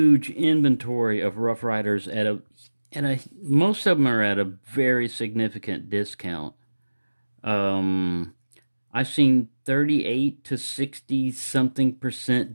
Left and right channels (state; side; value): inverted; both; correlation -1.00